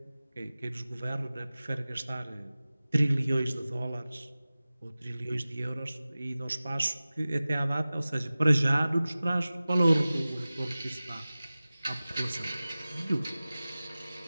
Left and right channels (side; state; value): both; inverted; correlation -0.97